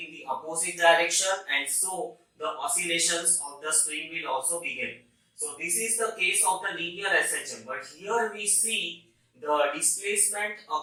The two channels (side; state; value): both; identical; correlation 1.00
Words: the opposite direction, and so the oscillations of the spring will also begin. So this is the case of the linear SHM, but here we see the displacement